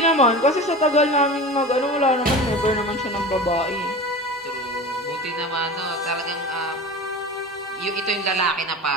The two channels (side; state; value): both; normal; correlation 0.32